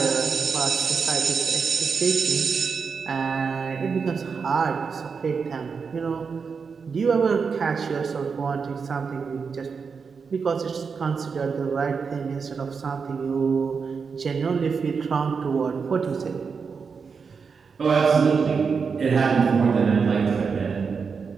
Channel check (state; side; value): quieter; left; 5.6 dB